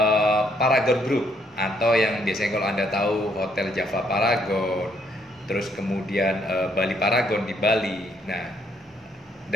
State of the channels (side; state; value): both; normal; correlation 0.70